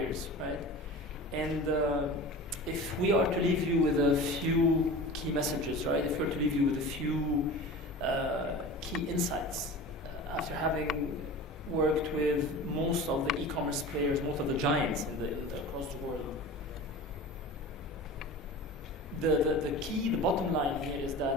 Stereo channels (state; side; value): normal; both; correlation 0.35